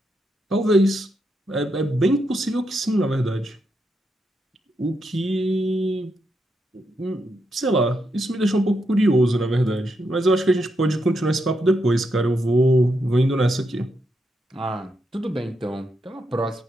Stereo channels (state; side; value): normal; both; correlation 0.82